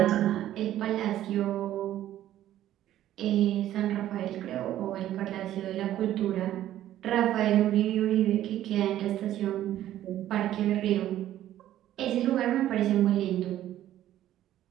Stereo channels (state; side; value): quieter; left; 12.7 dB